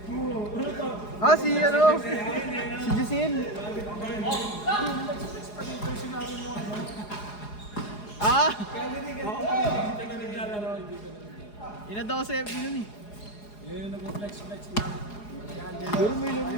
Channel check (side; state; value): right; late; 4.8 ms